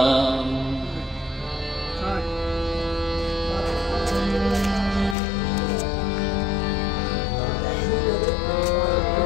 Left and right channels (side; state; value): right; drops out; at 5.2 s